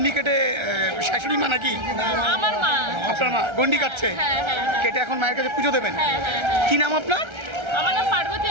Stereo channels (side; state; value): left; late; 1.3 ms